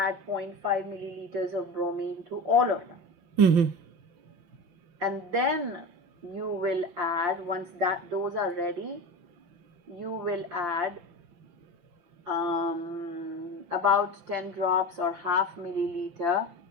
zero point 0.5 milliliters of bromine to all of them. And then you will add, once those are ready, you will add about 10 drops or half milliliter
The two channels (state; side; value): late; left; 5.8 ms